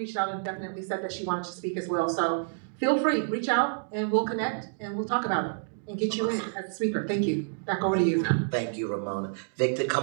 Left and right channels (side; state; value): left; silent; digital silence